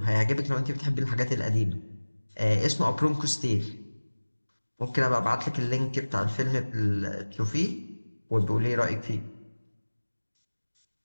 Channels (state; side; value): inverted; both; correlation -1.00